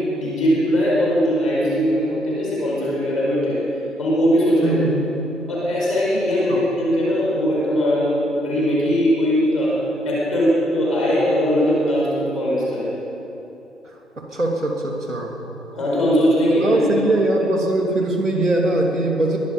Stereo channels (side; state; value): both; normal; correlation 0.72